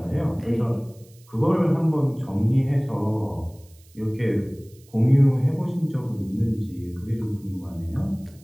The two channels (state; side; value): noise; right; hiss, 28 dB below the sound